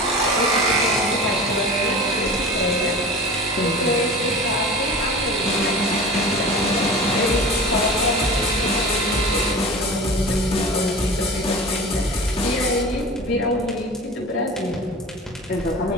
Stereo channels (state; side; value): normal; both; correlation 0.35